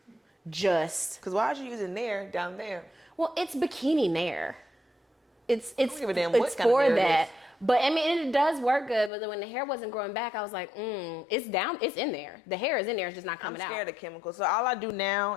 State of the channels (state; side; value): drops out; right; at 9.1 s